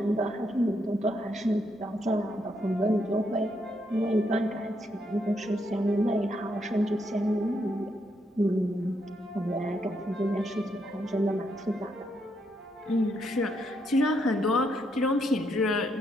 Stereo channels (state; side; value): normal; both; correlation 0.77